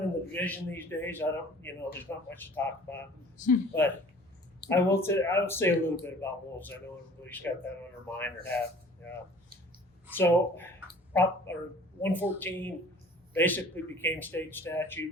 in the division these days. There's not much to talk about. But I will say a little bit about wolves. I know everybody's got that on their mind or have. So Prop 114 basically became state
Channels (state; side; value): normal; both; correlation 0.49